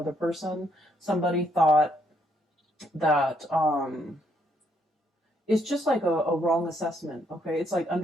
person. Somebody thought that it's just like a wrong assessment. Okay. It's like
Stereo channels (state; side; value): normal; both; correlation 0.73